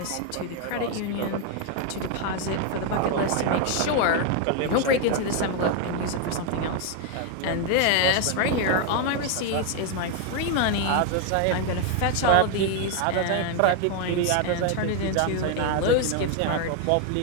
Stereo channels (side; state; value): both; different; correlation 0.00